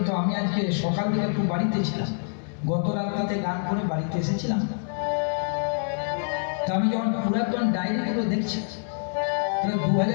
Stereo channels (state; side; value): silent; right; digital silence